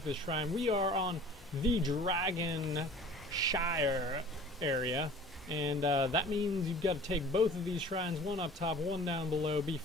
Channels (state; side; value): normal; both; correlation 0.45